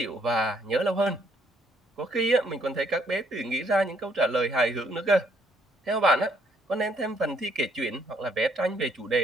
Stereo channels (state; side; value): normal; both; correlation 0.68